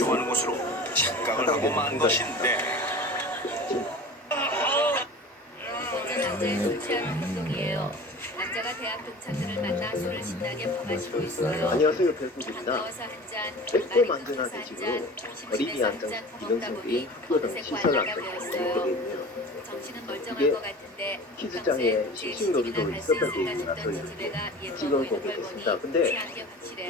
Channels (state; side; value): normal; both; correlation 0.38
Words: 것으로 착각을 하고 만 것인데 남자의 솔직한 행동이에요. 남자가 대학 동창들을 만나 술을 신나게 퍼마시고 있어요. 안녕하세요, 별국입니다. 더워서 한 잔, 백범 만드나 대식으로 어린이 안정 이동성 게임 학교당 시설 안정 되어 있네요. 정신은 이게 멀쩡한 것 같은데 키즈장에 싱싱놀이도 있었던 게임이라서 지금 보고 있습니다. 근데